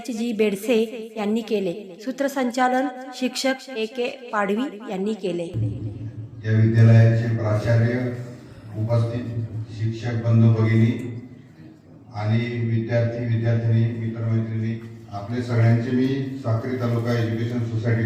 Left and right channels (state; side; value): identical; both; correlation 1.00